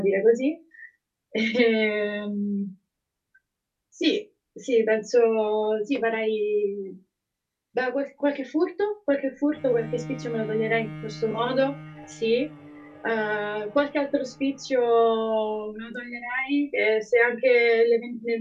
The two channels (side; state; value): both; identical; correlation 1.00